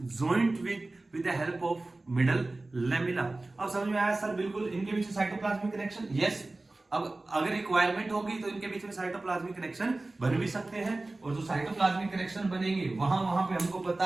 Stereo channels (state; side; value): quieter; left; 3.0 dB